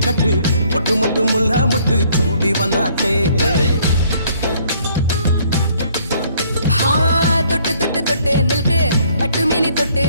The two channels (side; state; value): both; inverted; correlation -0.63